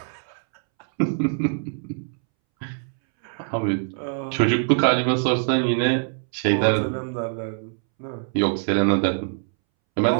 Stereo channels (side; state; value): left; silent; 63 dB below the other